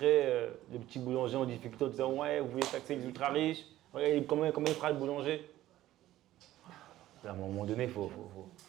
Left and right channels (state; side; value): quieter; left; 14.5 dB